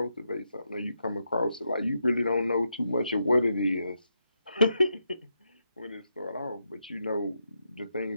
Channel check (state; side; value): inverted; both; correlation -0.83